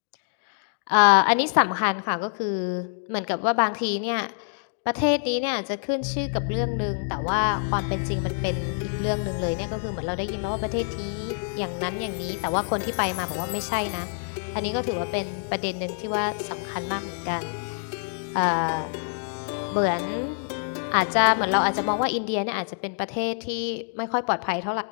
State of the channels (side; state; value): right; silent; digital silence